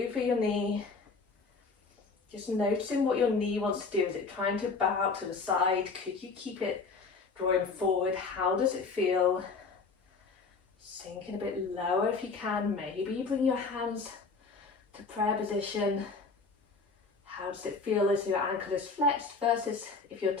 your knee. Just noticing what your knee wants to do. Is it trying to bow out to the side? Could you keep it drawing forward? How does it feel? Sinking a bit lower if you can. Maybe you bring your hands to prayer position. How does it feel as your ankle is flexed versus if your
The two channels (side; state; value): right; quieter; 4.4 dB